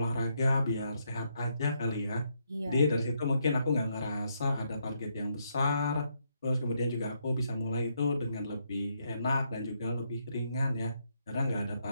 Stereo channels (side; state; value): both; inverted; correlation -0.76